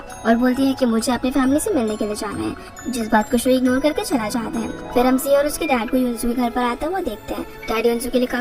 और बोलती है कि मुझे अपनी फैमिली से मिलने के लिए जाना है, जिस बात को शू इग्नोर करके चला जाता है। फिर हम सी और उसके डैड को युनसू के घर पर आता हुआ देखते हैं। डैड युनसू के लिए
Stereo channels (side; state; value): both; identical; correlation 1.00